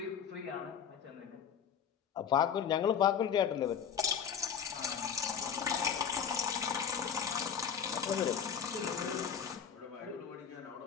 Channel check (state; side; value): quieter; right; 7.6 dB